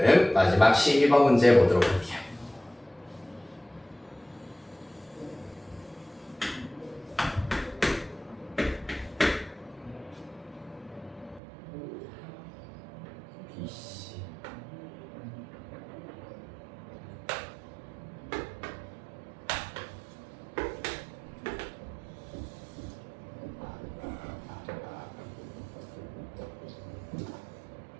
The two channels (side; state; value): left; drops out; at 11.4 s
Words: 마지막 12번 문제 보도록 할게요.